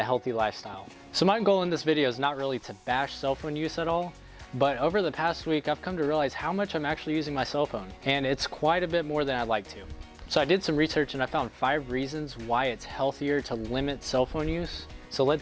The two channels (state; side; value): identical; both; correlation 1.00